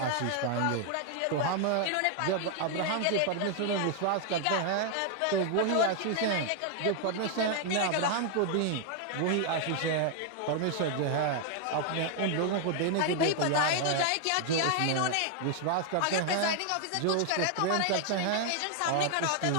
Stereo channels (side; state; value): both; different; correlation 0.00